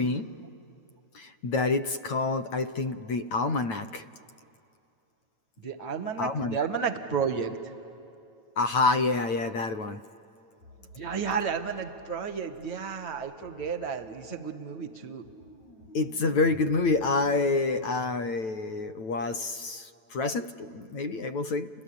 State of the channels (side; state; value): right; late; 9.1 ms